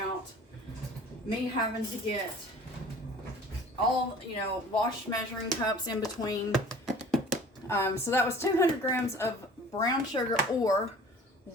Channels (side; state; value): both; normal; correlation 0.47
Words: me having to get all, wash measuring cups in between. So that was 200 grams of brown sugar or